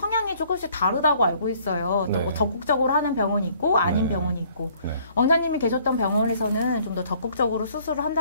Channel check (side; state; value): both; inverted; correlation -0.59